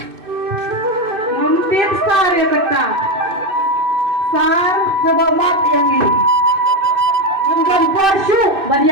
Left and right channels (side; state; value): left; late; 2.6 ms